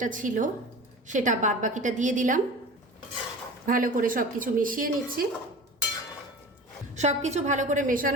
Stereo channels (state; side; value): normal; both; correlation 0.36